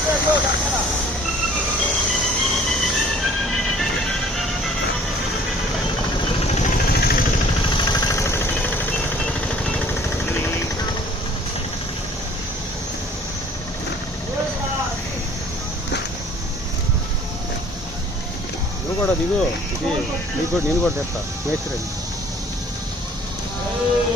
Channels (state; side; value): normal; both; correlation 0.54